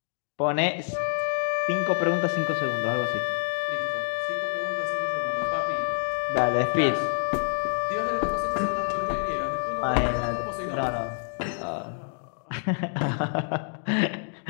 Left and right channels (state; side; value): silent; right; digital silence